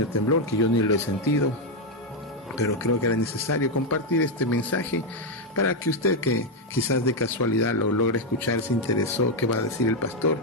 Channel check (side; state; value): both; normal; correlation 0.03